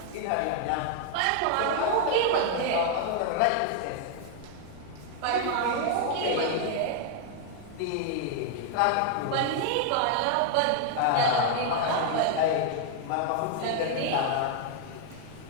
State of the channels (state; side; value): different; both; correlation 0.00